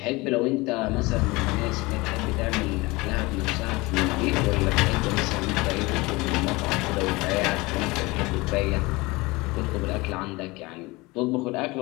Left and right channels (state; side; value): quieter; right; 23.0 dB